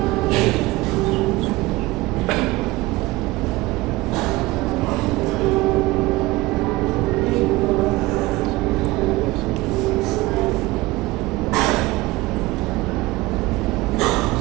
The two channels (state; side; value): quieter; left; 20.2 dB